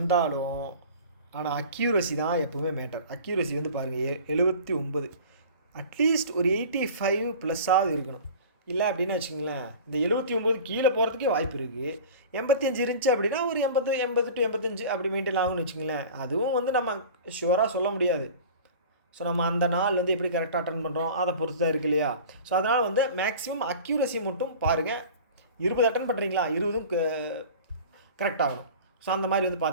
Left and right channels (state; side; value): inverted; both; correlation -0.39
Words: ஆனால் அக்யூரசி தான் எப்போவுமே மேட்டர். அக்யூரசி வந்து பாருங்கள் 79. அட்லீஸ்ட் ஒரு 85 ப்ளஸ்ஸாக இருக்கணும். இல்லை அப்படின்னு வச்சுங்களேன், இந்த 79 கீழே போகிறதுக்கே வாய்ப்பு இருக்குது. 85 இருந்துச்சு அப்படின்னா ஒரு 80 to 85 அப்படி மெயின்டைன் ஆகும்னு வச்சுங்களேன். அதுவும் வந்து நம்ம ஷுவராக சொல்ல முடியாது. ஸோ நம்ம அந்த நாள் வந்து எப்படி கரெக்டாக அட்டன் பண்ணுறோம் அதை பொறுத்து தான் இருக்குது இல்லையா. ஸோ அதனால் வந்து மேக்ஸிமம் அக்யூரசி மட்டும் பாருங்கள். 20 அட்டன் பண்ணுறீங்களா, 20ம் கரெக்டாகணும். ஸோ அந்த மாதிரி வந்து